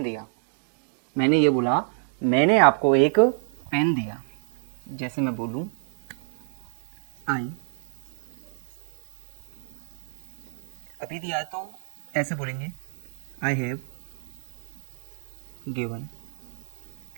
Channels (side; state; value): left; silent; 60 dB below the other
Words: दिया। मैंने ये बोला मैंने आपको एक पेन दिया। जैसे मैं बोलूं आई, अभी दिया तो ऐसे बोलेंगे I have given